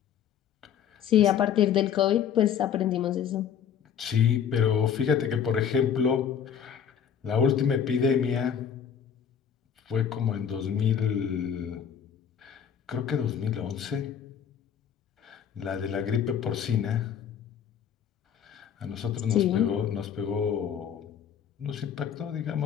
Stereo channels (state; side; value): quieter; right; 8.3 dB